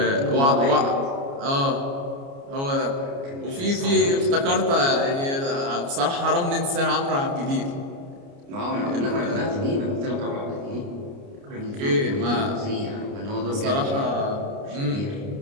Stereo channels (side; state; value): left; late; 29 ms